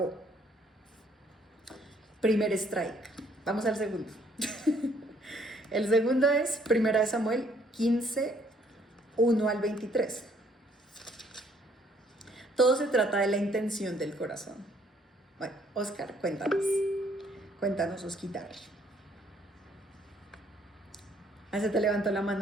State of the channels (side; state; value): both; normal; correlation 0.64